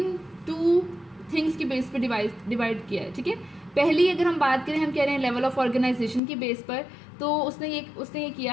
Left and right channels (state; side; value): drops out; right; at 6.2 s